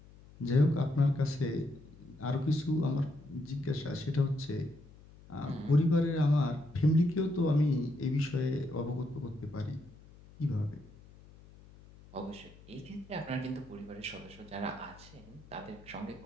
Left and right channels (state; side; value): noise; left; hum, 22 dB below the sound